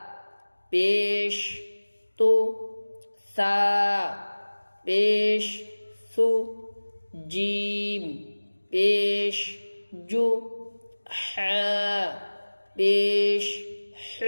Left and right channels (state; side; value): inverted; both; correlation -1.00